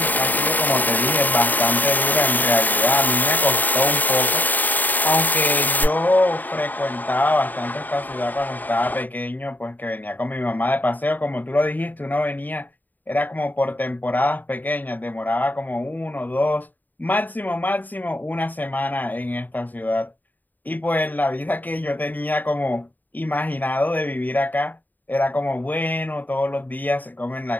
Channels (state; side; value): late; right; 0.086 ms